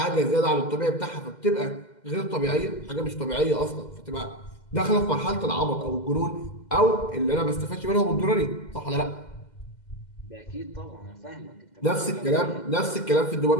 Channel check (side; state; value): right; late; 2.1 ms